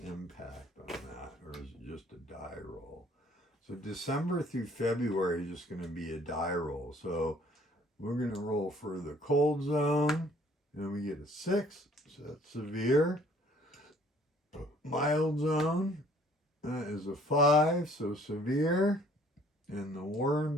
impact on that, or is it just a die roll? So December through February is just going to be a die roll. So we're going to roll for the cold zone, and we get a 6, so that's severe. Mild zone is a 5, so severe. In the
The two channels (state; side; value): normal; both; correlation 0.58